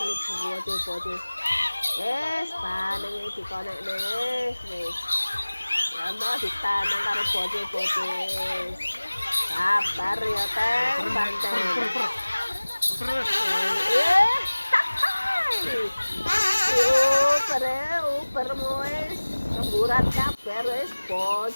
bocil. Yes, pandang ini dikonek wis. Ya mau ditanang karo bocil. Sabar ya teh, banteng. Uber moe remburan kabar wis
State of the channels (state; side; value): inverted; both; correlation -1.00